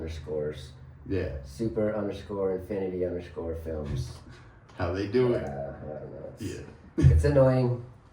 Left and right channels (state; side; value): identical; both; correlation 1.00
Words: Yeah. Super_Infinity_films. How they do it. I don't know. Yeah. It's annoying.